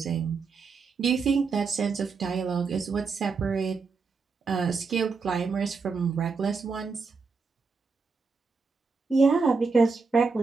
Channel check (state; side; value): quieter; left; 4.7 dB